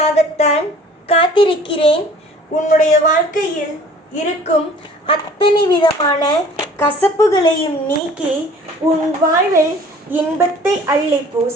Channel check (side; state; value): both; normal; correlation 0.50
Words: காத்திருக்கிறேன். உன்னுடைய வாழ்க்கையில் இருக்கும் அத்தனை விதமான கசப்புகளையும் நீக்கி உன் வாழ்வில் இன்பத்தை அள்ளி